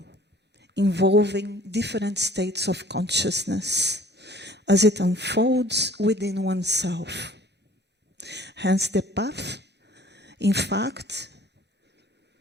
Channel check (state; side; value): normal; both; correlation 0.53